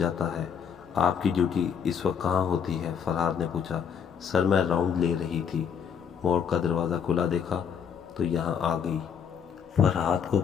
ہے۔ آپ کی ڈیوٹی اس وقت کہاں ہوتی ہے؟ فرحاد نے پوچھا۔ سر، میں راؤنڈ لے رہی تھی، مورگ کا دروازہ کھلا دیکھا تو یہاں آ گئی۔ فرحاد کو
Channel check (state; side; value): quieter; right; 7.4 dB